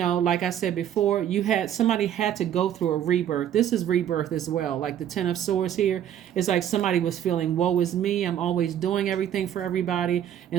like I said before, somebody had to go through a rebirth. This is rebirth as well. Like the Ten of Swords here, it's like somebody was feeling, woe is me, I'm always doing everything for everybody.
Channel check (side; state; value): left; quieter; 10.3 dB